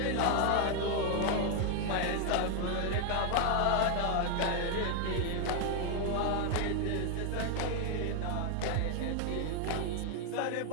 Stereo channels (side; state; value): both; different; correlation 0.00